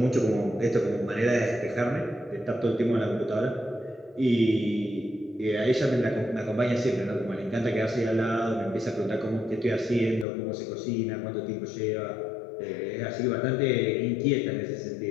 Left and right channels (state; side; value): drops out; right; at 10.2 s